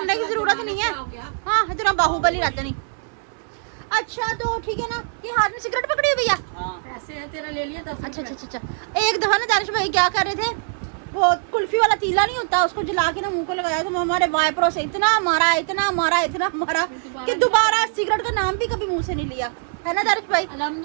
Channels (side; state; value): left; silent; 61 dB below the other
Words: की जरूरत नहीं है। हो गया। हाँ इतना बाहुबली रहता नहीं। अच्छा तो ठीक है ना, ये हाथ में सिगरेट पकड़ी हुई भैया। पैसे है तेरा, ले लिया 10 अच्छा अच्छा अच्छा अच्छा। एक दफा ना दानिश भाई क्या कर रहे थे, वो कुल्फी वाला तीला नहीं होता, उसको जला के ना मुंह को लगाया, तो हमारे वाइपरों से इतना मारा इतना मारा इतना मारा कि दोबारा सिगरेट का नाम भी कभी मुंह से नहीं लिया, है ना दानिश भाई?